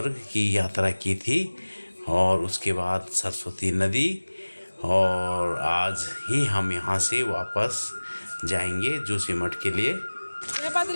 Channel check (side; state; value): both; inverted; correlation -1.00